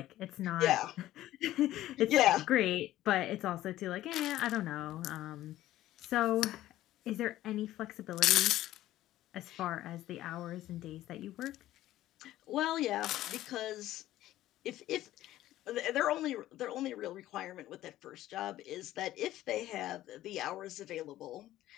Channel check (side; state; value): right; quieter; 14.5 dB